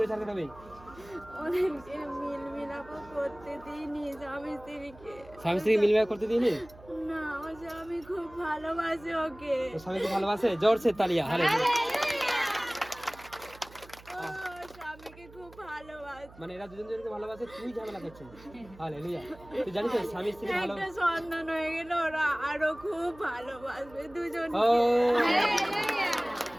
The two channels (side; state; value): right; noise; hum, 21 dB below the sound